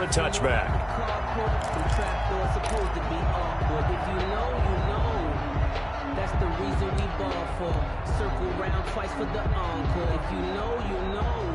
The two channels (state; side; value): identical; both; correlation 1.00